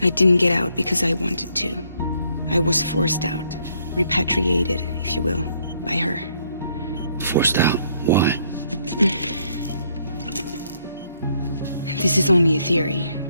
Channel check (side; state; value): both; inverted; correlation -0.70